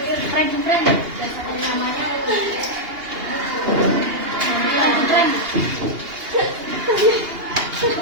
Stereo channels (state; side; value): late; left; 2.8 ms